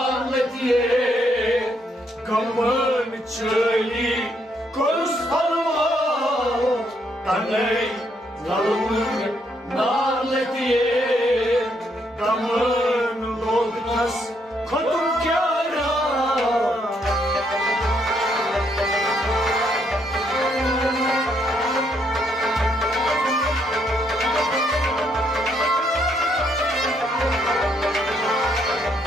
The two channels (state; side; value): normal; both; correlation 0.73